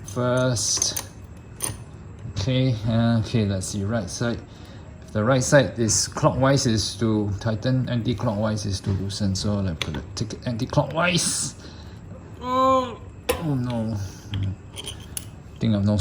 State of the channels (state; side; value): identical; both; correlation 1.00